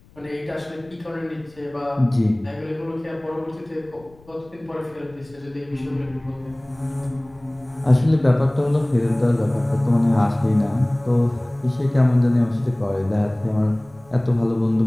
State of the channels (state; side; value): noise; left; rumble, 27 dB below the sound